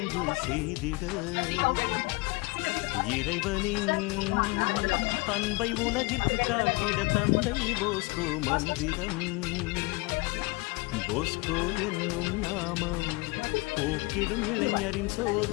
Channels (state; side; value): quieter; right; 24.3 dB